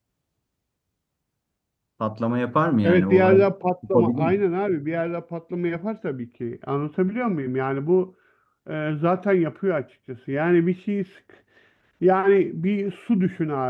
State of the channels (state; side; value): identical; both; correlation 1.00